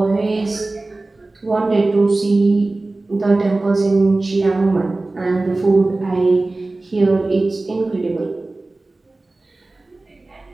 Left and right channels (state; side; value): quieter; left; 3.1 dB